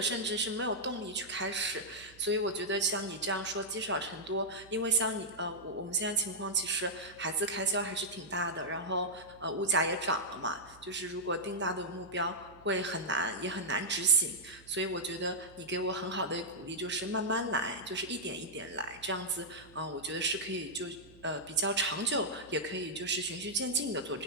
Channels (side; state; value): right; noise; hum, 24 dB below the sound